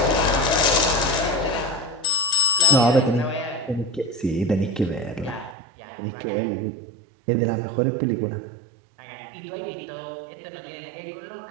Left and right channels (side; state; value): left; drops out; at 5.6 s